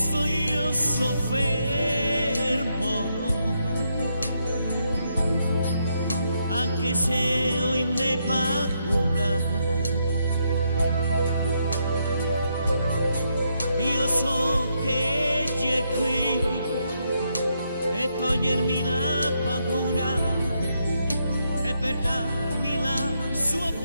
io soffermo, anche se ho in me paura, io so che Egli è qui e togliermi la paura e per darmi la sua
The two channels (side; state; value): both; inverted; correlation -0.78